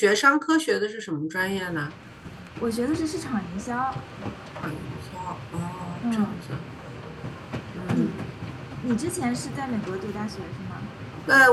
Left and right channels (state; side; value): identical; both; correlation 1.00